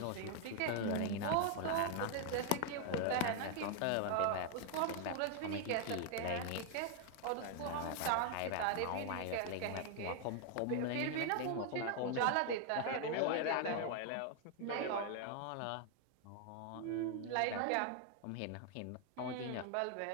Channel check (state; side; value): different; both; correlation 0.00